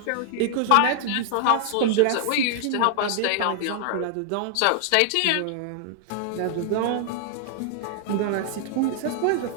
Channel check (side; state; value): both; different; correlation 0.00